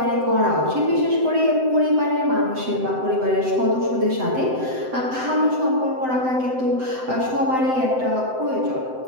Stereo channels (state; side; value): late; left; 7.8 ms